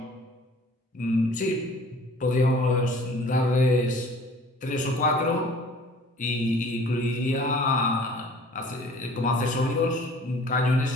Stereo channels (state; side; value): normal; both; correlation 0.50